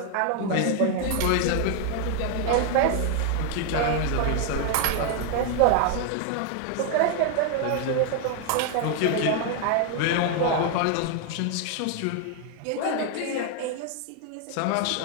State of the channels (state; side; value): different; both; correlation 0.00